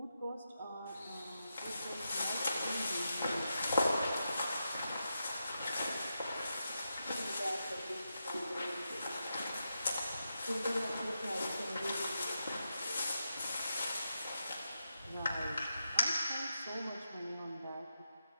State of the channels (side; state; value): both; inverted; correlation -0.87